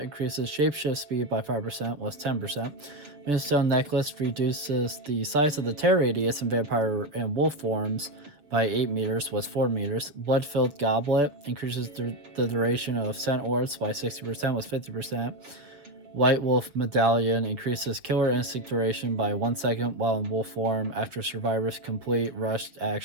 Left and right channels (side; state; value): left; late; 6.3 ms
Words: increases shapeshift speed by 5% with 10%. Moonstone Necklace reduces the size of the tear radius in vampire and wolf forms by 8 meters with 4 meters. Blood-Filled Goblet increases the duration of scent orbs by 60% with 50%. White Wolf Medallion increases Killer Instinct duration by 1 second while in wolf form after survivors complete rushed